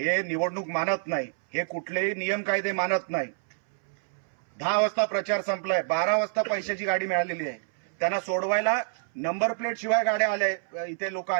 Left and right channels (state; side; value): silent; left; 60 dB below the other